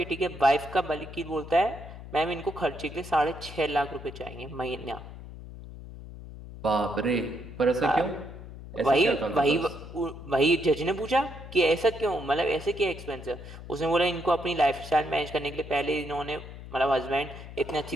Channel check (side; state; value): left; noise; hum, 13 dB below the sound